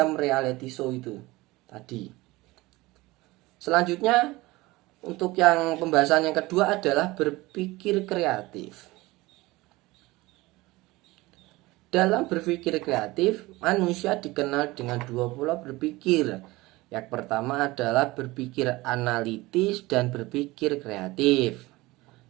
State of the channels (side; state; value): left; quieter; 20.4 dB